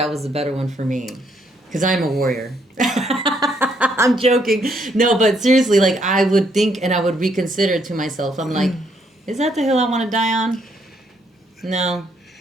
was the better one for me, because I'm a warrior. I'm joking. No, but seriously, like, I would think and I would reconsider to myself. I'm like, is that the hill I want to die on? No.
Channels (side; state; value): both; normal; correlation 0.72